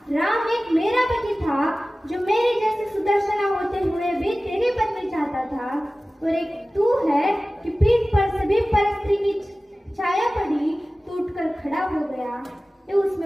राम एक मेरा पति था जो मेरे जैसे सुदर्शना होते हुए भी तेरी पत्नी चाहता था, और एक तू है कि पीठ पर सभी परस्त्री की छाया पड़ी, टूटकर खड़ा हो गया। ये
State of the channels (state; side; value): normal; both; correlation 0.97